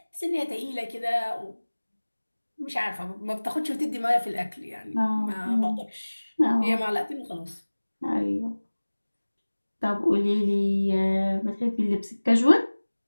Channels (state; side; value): inverted; both; correlation -1.00